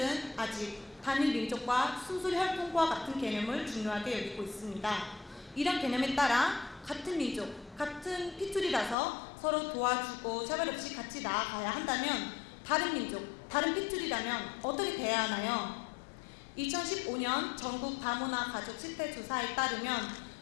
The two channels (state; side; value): drops out; right; at 9.0 s